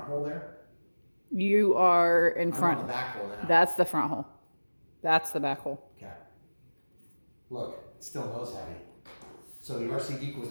hole there? You are in front. I'm on the back hole now. That's the front hole. That's the back hole. Okay. Look, it's still nose heavy. So the RC Geek was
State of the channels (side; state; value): both; inverted; correlation -1.00